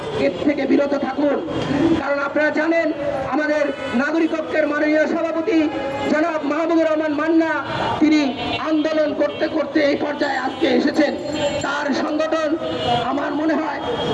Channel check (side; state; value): both; identical; correlation 1.00